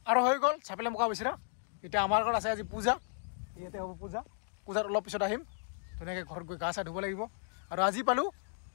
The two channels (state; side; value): silent; right; digital silence